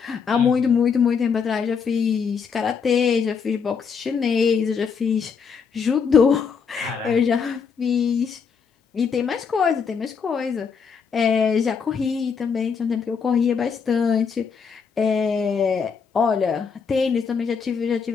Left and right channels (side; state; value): right; quieter; 6.1 dB